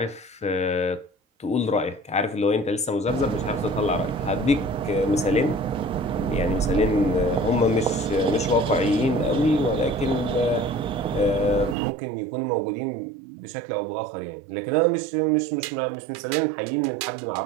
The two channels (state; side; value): drops out; left; at 11.8 s